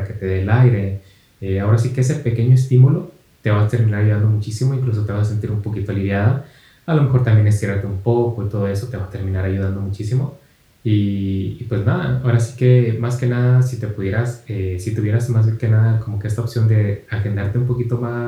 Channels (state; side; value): identical; both; correlation 1.00